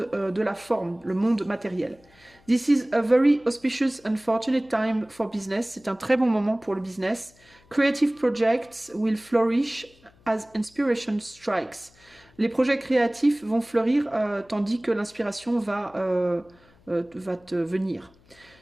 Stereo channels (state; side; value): noise; left; hum, 29 dB below the sound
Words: de la forme, le monde matériel. This is a very auspicious and fortunate time for business. C'est un très bon moment pour le business. Creative projects will flourish as inspiration strikes. Les projets créatifs vont fleurir tandis que l'inspiration va te venir.